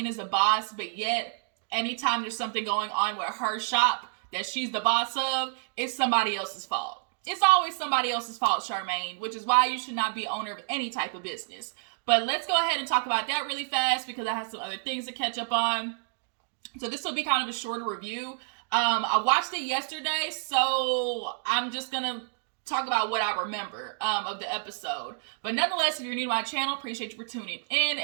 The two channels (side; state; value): left; silent; digital silence